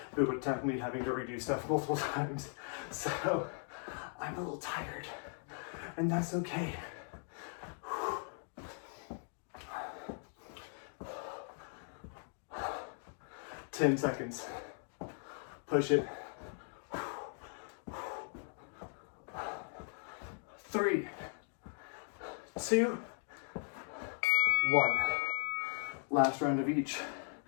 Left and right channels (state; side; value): silent; right; 52 dB below the other